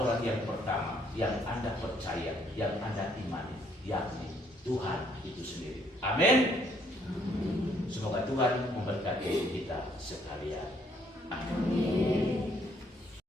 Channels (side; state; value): both; normal; correlation 0.67